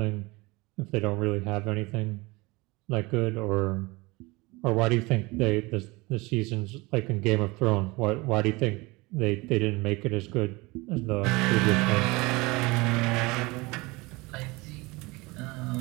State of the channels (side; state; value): left; quieter; 23.7 dB